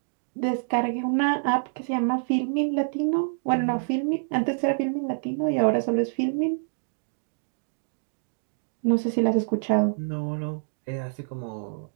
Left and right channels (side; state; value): left; silent; digital silence